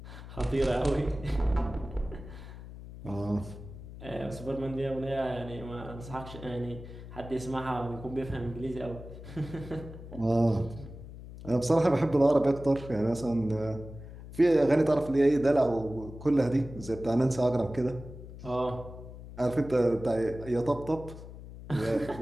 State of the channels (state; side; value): noise; left; hum, 14 dB below the sound